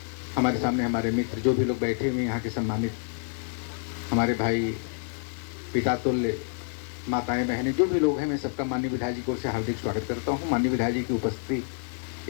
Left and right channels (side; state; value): right; silent; 59 dB below the other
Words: हमारे सामने, हमारे मित्र जो भी लोग बैठे हुए हैं यहाँ के सम्मानित, हमारे भाई पिता तुल्य, माताएं बहनें, जो भी लोग हैं, मैं सबका माननीय विधायक जी को से हार्दिक स्वागत करता हूँ। माननीय विधायक जी की उपस्थिति